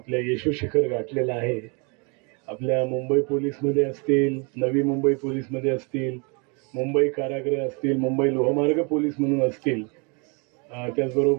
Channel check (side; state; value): left; quieter; 32.8 dB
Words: यशो शिखर गाठलेलं आहे, आपल्या मुंबई पोलीसमध्ये असतील, नवी मुंबई पोलीसमध्ये असतील, मुंबई कारागृह असतील, मुंबई लोहमार्ग पोलीस म्हणून असतील,